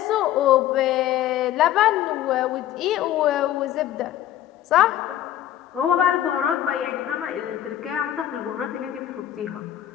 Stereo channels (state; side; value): quieter; right; 12.2 dB